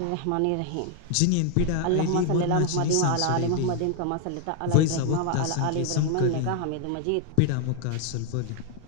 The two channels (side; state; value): both; different; correlation 0.00